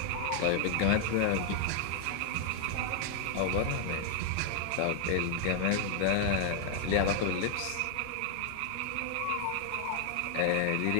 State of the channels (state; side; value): different; both; correlation 0.01